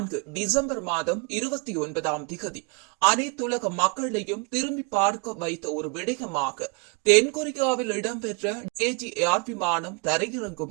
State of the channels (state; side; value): quieter; left; 32.2 dB